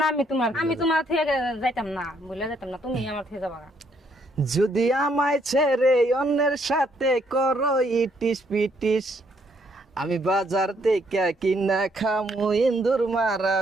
না আমি তোমার থেকে যাইতাম না, ভুলে যাইতাম না, তুমি আমার থেকে যাবা গা। যদি আমায় ছেড়ে অন্যের সাথে করো ইটিস পিটিস, আমি বাজার থেকে কিনা খামু ইন্দুর মারা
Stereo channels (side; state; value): both; normal; correlation 0.70